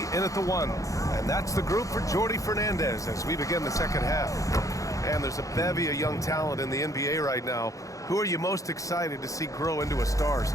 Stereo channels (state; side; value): late; right; 0.16 ms